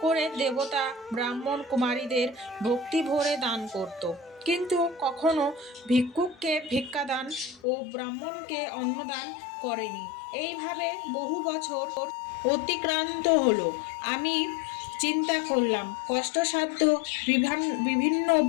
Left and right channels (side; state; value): right; drops out; at 7.6 s